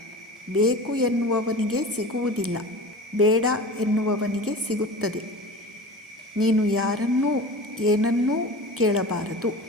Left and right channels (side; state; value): both; normal; correlation 0.35